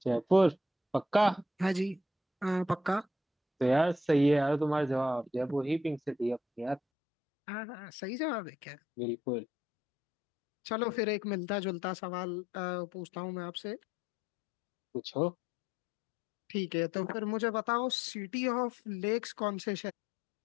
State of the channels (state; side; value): drops out; right; at 6.8 s